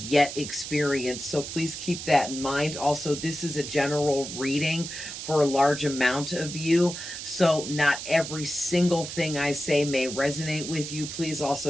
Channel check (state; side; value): noise; right; hiss, 8 dB below the sound